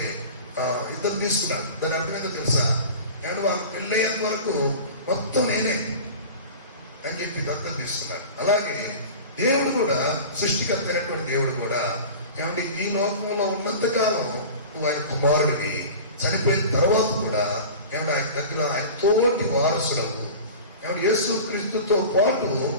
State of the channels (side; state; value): both; inverted; correlation -0.36